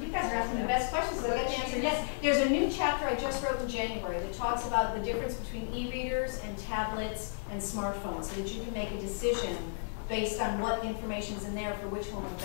guys are asking the best questions, so I get to answer yes. There's a new chapter I just wrote in January that talks about the difference between e-readers and tablets and smartphones, so that you can make a decision based on what information is in there for which one will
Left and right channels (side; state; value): right; silent; digital silence